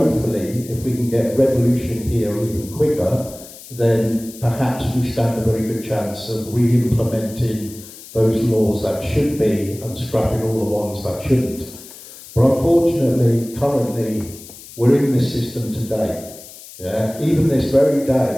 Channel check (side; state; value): left; noise; hiss, 17 dB below the sound